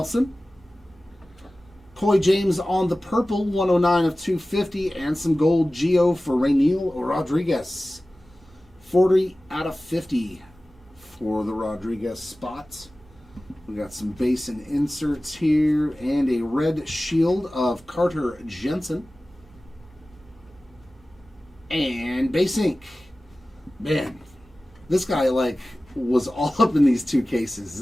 Coy James on the purple, 109 of 250, and some gold Gio for Rainiel Rodriguez. 40 out of 50 for the Rodriguez spots. We got some base and inserts here, and a red shield of Carter Jensen. And base ink. Man, this guy was all up in these two cases. Is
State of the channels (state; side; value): normal; both; correlation 0.97